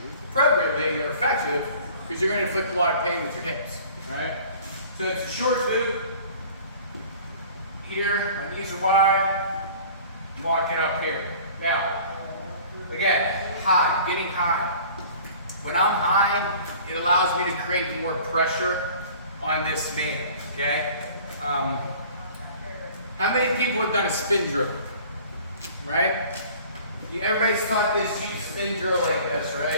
appropriately, they're effective, because you're going to inflict a lot of pain with your hips, right? So it's a short boot. Here, my knees are wide. I'm walking up here. Now, again, high, getting high. When I'm high, it allows me to create more pressure on this man, okay? How many people have done a spin drill? Right? Everybody's taught this cheap spin drill like this,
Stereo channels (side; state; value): both; inverted; correlation -0.47